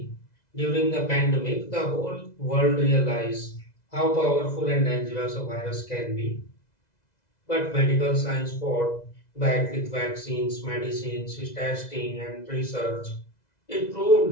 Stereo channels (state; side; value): late; right; 2.0 ms